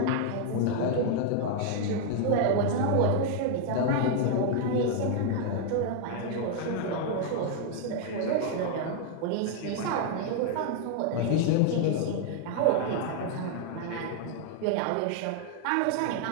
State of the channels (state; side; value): different; both; correlation 0.00